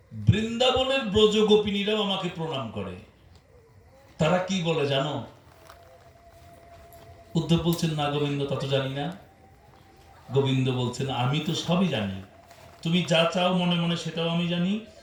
বৃন্দাবনের ব্রজ গোপিনীরাও আমাকে প্রণাম করে, তারা কি বলে জানো? উদ্ধব বলছেন না গোবিন্দ, তা তো জানি না। গোবিন্দ বলছেন আমি তো সবই জানি, তুমি যা চাও মনে মনে সেটাও আমি জানি,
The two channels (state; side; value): identical; both; correlation 1.00